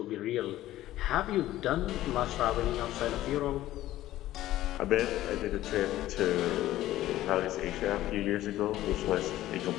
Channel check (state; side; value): quieter; right; 14.6 dB